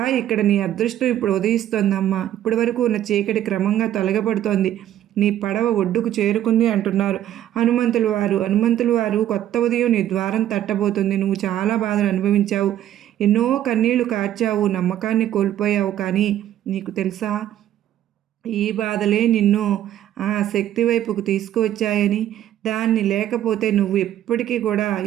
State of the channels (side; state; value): left; quieter; 11.9 dB